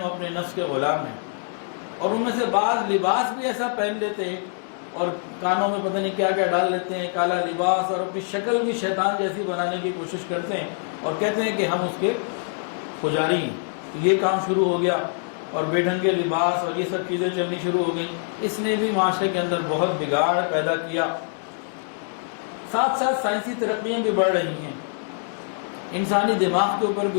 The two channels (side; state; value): right; silent; digital silence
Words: اپنے نفس کے غلام ہیں۔ اور ان میں سے بعض لباس بھی ایسا پہن لیتے ہیں اور کانوں میں پتہ نہیں کیا کیا ڈال لیتے ہیں، کالا لباس، اور اپنی شکل بھی شیطان جیسی بنانے کی کوشش کرتے ہیں اور کہتے ہیں کہ ہم اس کے پجاری ہیں۔ یہ کام شروع ہو گیا، اور بے ڈھنگے لباس اور یہ سب چیزیں چلنی شروع ہو گئیں۔ اس نے بھی معاشرے کے اندر بہت بگاڑ پیدا کیا۔ ساتھ ساتھ سائنسی ترقیاں بھی بڑھ رہی ہیں، انسانی دماغ کے اوپر